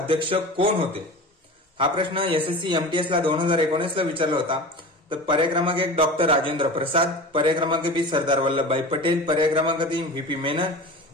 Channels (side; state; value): both; normal; correlation 0.33